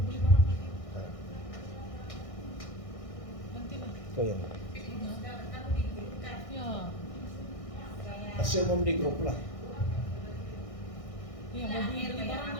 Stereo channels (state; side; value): late; right; 1.6 ms